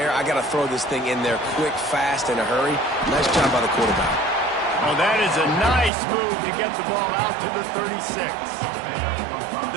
I got to throw this thing in there quick, fast, in a hurry. Nice job by the quarterback. Oh, that is a nice move to get the ball out to the 36.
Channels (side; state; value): left; drops out; at 5.9 s